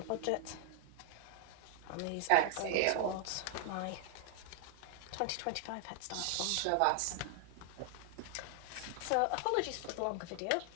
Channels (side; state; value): both; different; correlation 0.00